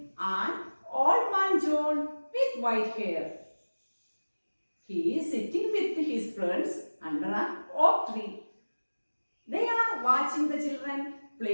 an old man John with white hair. He is sitting with his friends under an oak tree. They are watching the children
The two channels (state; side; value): inverted; both; correlation -1.00